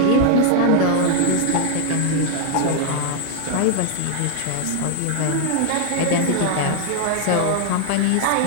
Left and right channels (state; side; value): different; both; correlation 0.00